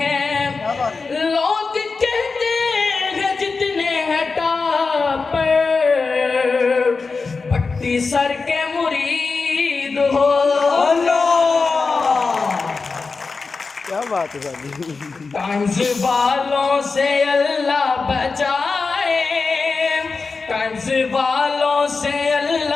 ہیں، لوگ کہتے ہیں جتنے ہیں ٹاپر پٹی سر کے مرید ہو۔ کیا بات ہے؟ طنز والوں سے اللہ بچائے، طنز والوں سے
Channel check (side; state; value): right; quieter; 4.4 dB